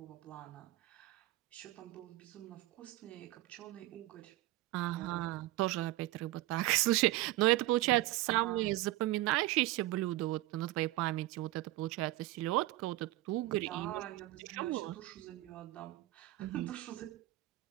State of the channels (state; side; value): quieter; left; 17.2 dB